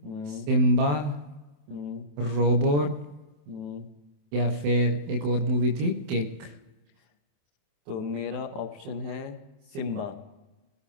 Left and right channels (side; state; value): left; late; 28 ms